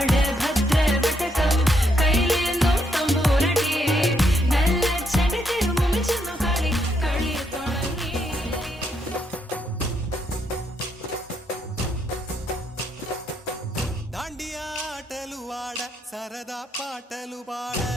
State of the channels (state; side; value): normal; both; correlation 0.76